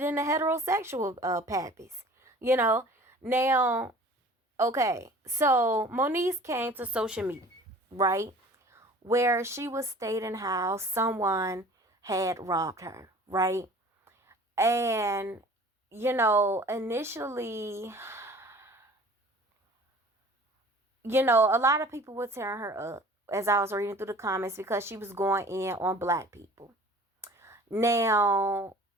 the heterosexual pappies. You know. Now, okay, so Moniece came to social media, right? Where she was stating how someone had robbed her, right? And, initially, a lot of people were tearing her up as I was reading through the comments because she was going in on black people. Now,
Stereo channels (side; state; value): both; normal; correlation 0.46